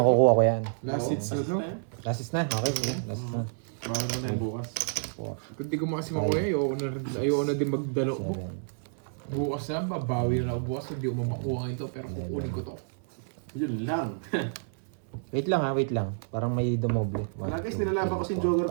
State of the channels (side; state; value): left; silent; 58 dB below the other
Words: ko yan. Last hits na to. Last is na? Okay, sige. Last is na. Bawal mo na yung bukas. 4, Kung di ko makasi makuha, ayoko na din magdalo ko. 7, Bukas na, babawi na ako bukas. Hindi ko mamakuha ito, pero kukunin ko to. Yun lang. Wait lang ha, wait lang. Parang may dumoble. Wala, guys, nilalaban ko si